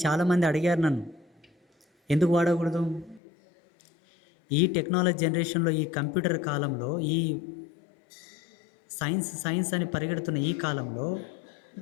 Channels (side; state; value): right; drops out; at 3.2 s